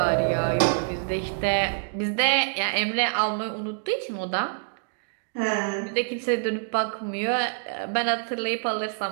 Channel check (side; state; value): left; silent; digital silence